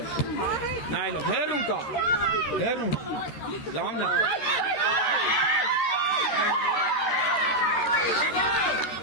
Նայելով հերուն կա։ Հերուն։ Լավն է։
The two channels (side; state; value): right; late; 13 ms